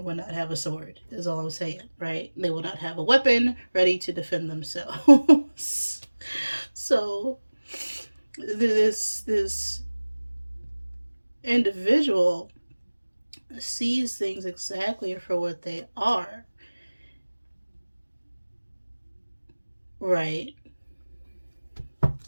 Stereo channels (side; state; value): both; inverted; correlation -1.00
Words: will not have a sword, is all I'm saying, right? They will not have a weapon ready to defend themselves. So this individual sees things exactly for what they are, right?